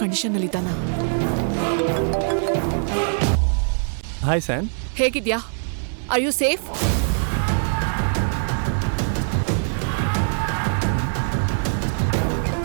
ಕಂಡೀಷನ್ನಲ್ಲಿದ್ದಾನ. ಹಾಯ್ ಸ್ಯಾನ್, ಹೇಗಿದ್ಯಾ? Are you safe?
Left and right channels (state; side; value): silent; left; digital silence